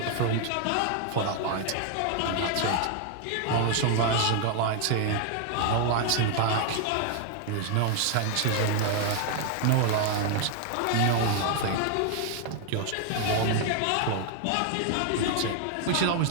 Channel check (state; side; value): different; both; correlation 0.00